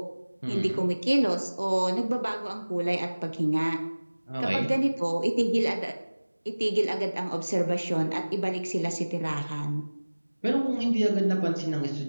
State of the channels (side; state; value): both; inverted; correlation -1.00